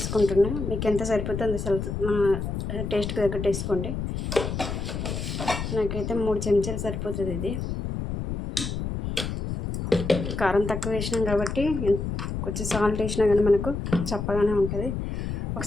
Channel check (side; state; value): left; noise; rumble, 4 dB below the sound